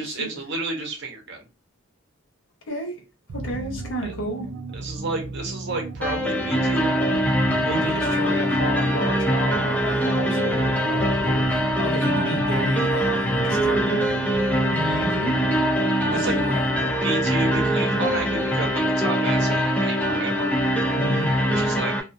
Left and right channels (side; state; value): both; normal; correlation 0.63